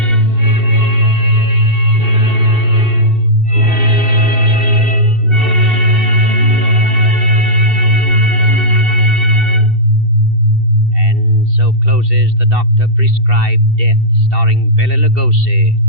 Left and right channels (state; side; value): late; left; 2.7 ms